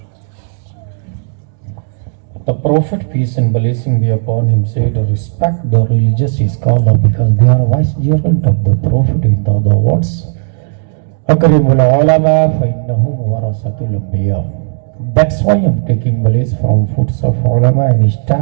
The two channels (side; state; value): left; silent; digital silence